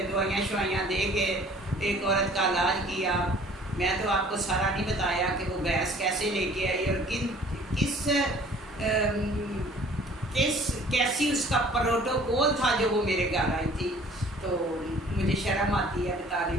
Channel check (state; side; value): normal; both; correlation 0.52